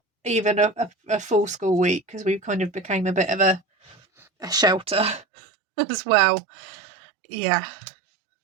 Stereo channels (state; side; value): drops out; left; at 5.2 s